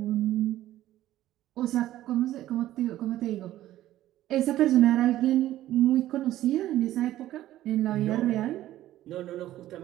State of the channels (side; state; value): left; quieter; 14.0 dB